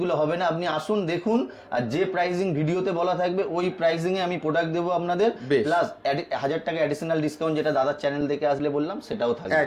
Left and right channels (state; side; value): identical; both; correlation 1.00